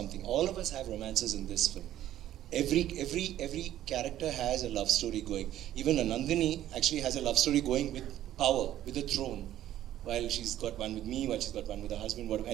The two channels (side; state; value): left; quieter; 12.6 dB